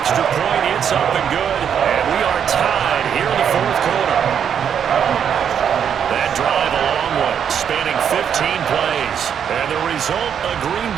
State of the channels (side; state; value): left; quieter; 8.1 dB